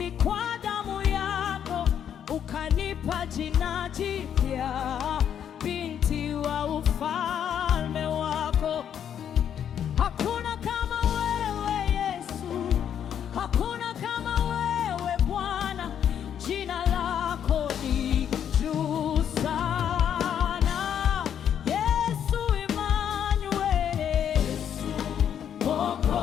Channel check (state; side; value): quieter; right; 9.1 dB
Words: kwa damu yako ukanipa jina jipya, binti wa ufalme wako. Hakuna kama wewe Yesu, hakuna kama wewe Bwana, jina lako ni juu sana. Yesu Immanueli, Yesu